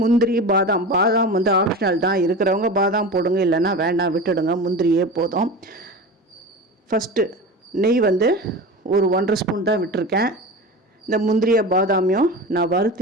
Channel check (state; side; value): normal; both; correlation 0.30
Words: முந்திரி பாதாம் ஆப்ஷனல் தான். இருக்கிறவங்க பாதாம் போடுங்க, இல்லைன்னா வேண்டாம் விட்டுடுங்க, முந்திரியே போதும். ஃபஸ்ட்டு நெய் ஒரு 1.5 ஸ்பூன் தான் விட்டுருக்கேன். இந்த முந்திரிய பாதாமையும் நான்